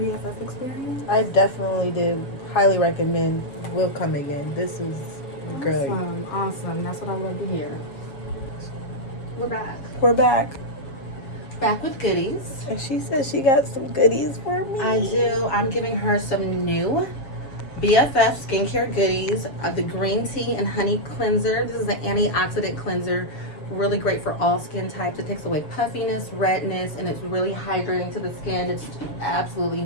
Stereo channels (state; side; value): late; right; 7.2 ms